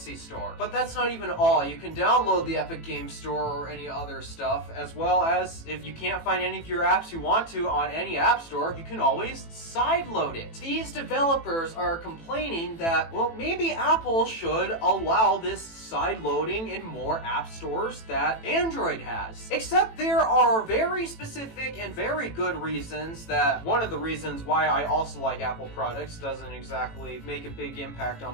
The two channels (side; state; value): right; late; 18 ms